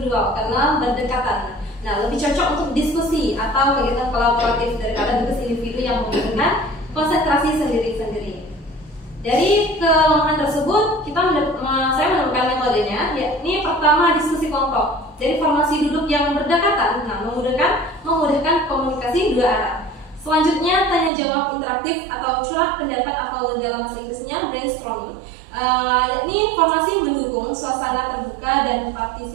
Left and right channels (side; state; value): left; drops out; at 21.1 s